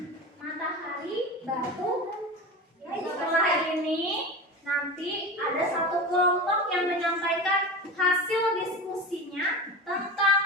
Matahari, batu. Setelah ini nanti ada satu kelompok yang menyampaikan hasil diskusinya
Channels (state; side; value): normal; both; correlation 0.29